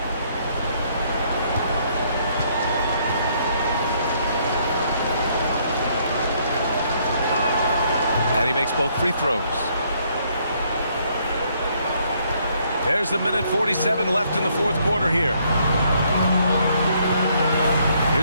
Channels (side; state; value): both; inverted; correlation -0.69